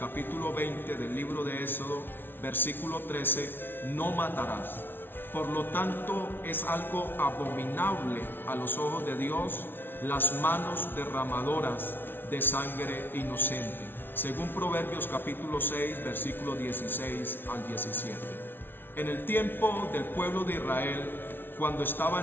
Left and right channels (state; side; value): late; right; 0.10 ms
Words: 20 del libro de Éxodo, versículo 13, no matarás. Por lo tanto, es algo abominable a los ojos de Dios las manos derramadoras de sangre inocente, según Proverbios capítulo 6, versículo 16 al 17. En el tiempo del pueblo de Israel, cuando estaba